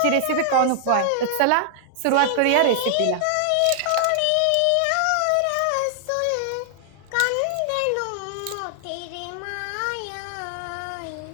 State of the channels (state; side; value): different; both; correlation -0.01